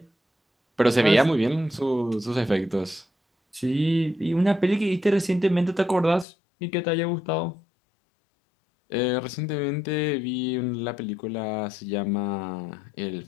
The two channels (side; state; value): right; drops out; at 6.2 s